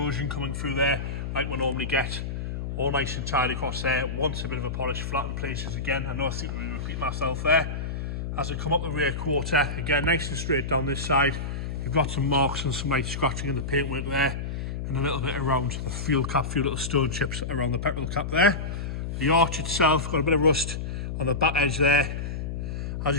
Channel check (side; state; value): left; noise; hum, 4 dB below the sound